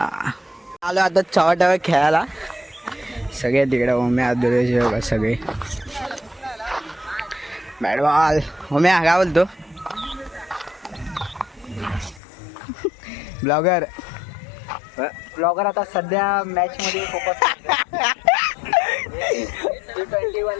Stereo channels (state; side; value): drops out; right; at 12.2 s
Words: आता चव्हाट्यावर खेळायला. सगळे तिकडे ओम्या दुरेश सगळे बॅटबॉल. ओम्या काय बोलतो. ब्लॉगर आता सध्या मॅच मध्ये फोकस. T20